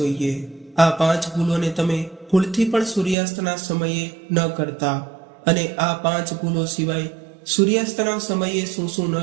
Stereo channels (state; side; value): drops out; left; at 3.2 s